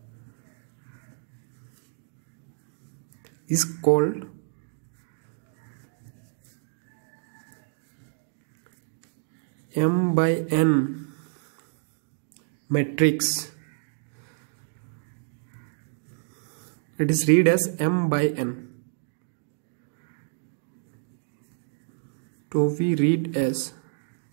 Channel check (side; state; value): left; silent; digital silence